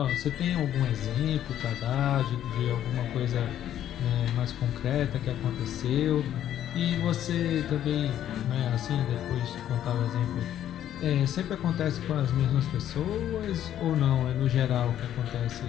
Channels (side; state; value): right; quieter; 11.2 dB